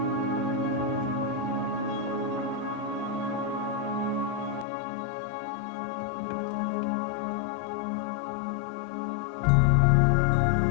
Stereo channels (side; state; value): right; drops out; at 4.7 s